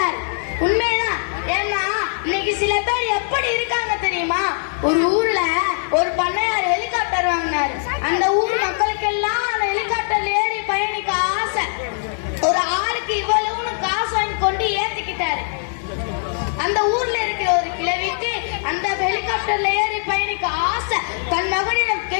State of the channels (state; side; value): silent; right; 65 dB below the other